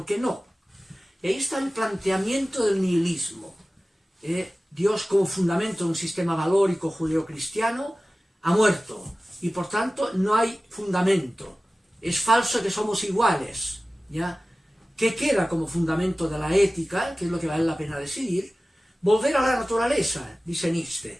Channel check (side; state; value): both; normal; correlation 0.96